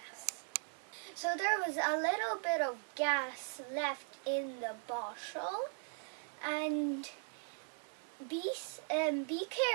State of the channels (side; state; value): left; silent; 52 dB below the other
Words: So there was a little bit of gas left in the bottle, and be